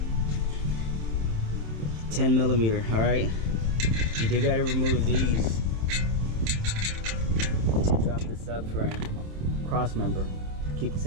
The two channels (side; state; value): left; late; 27 ms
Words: All right, you do got to remove these to drop the subframe cross member. Keep the